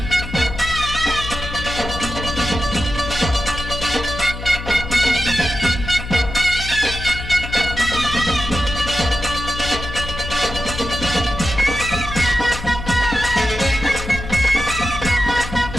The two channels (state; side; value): noise; left; hum, 9 dB below the sound